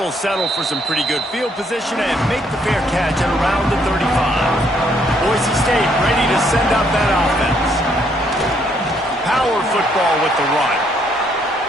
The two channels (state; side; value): normal; both; correlation 0.70